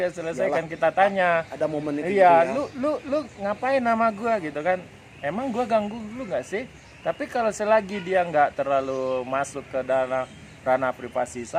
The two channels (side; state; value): both; identical; correlation 1.00